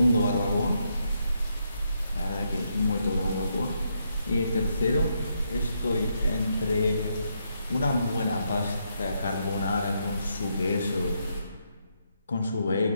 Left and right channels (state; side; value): inverted; both; correlation -0.79